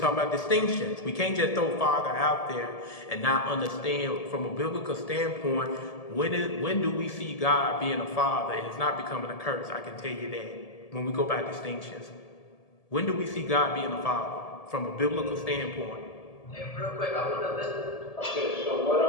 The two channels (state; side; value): late; right; 1.7 ms